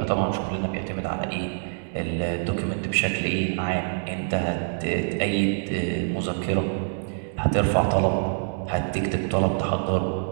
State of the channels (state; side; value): silent; left; 61 dB below the other